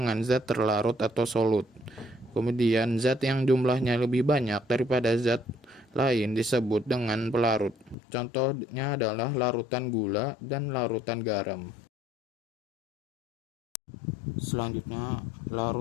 zat terlarut atau solut. Kemudian zat yang jumlahnya lebih banyak daripada zat lain disebut dengan pelarut. Contohnya adalah larutan gula dan larutan garam. Selanjutnya,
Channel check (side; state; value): right; drops out; at 8.0 s